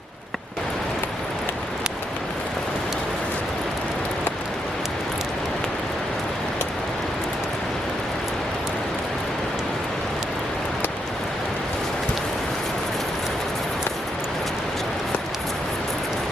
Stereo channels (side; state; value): both; normal; correlation 0.78